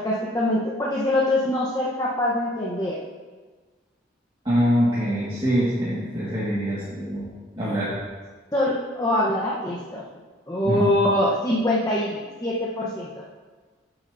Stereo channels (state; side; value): normal; both; correlation 0.54